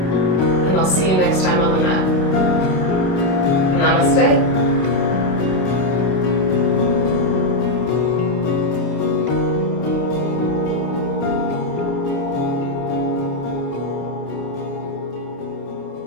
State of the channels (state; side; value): late; right; 27 ms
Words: and I'll see you next time on the mat. Namaste.